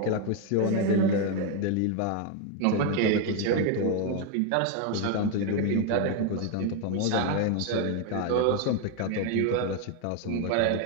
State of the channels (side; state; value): both; different; correlation 0.01